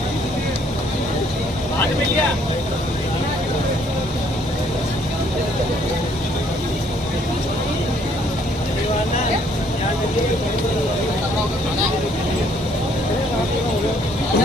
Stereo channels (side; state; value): both; normal; correlation 0.65